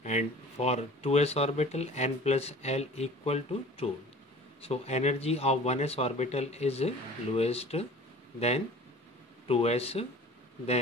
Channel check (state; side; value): normal; both; correlation 0.44